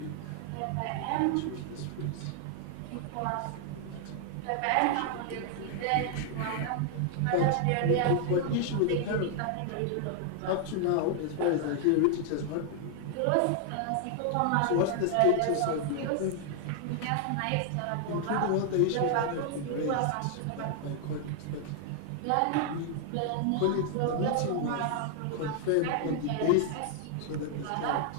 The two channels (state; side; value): different; both; correlation 0.00